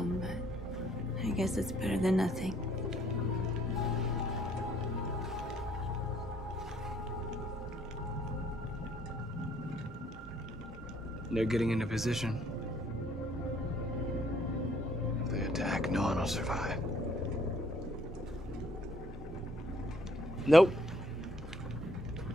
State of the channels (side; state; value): both; normal; correlation 0.65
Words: but I guess it's better than nothing. They're getting into position. If they attack, no one will survive. Nope.